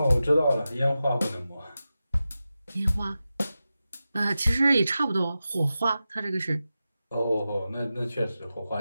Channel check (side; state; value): both; inverted; correlation -0.93